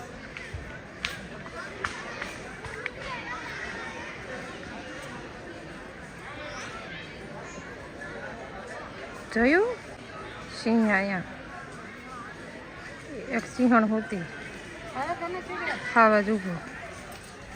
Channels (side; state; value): both; identical; correlation 1.00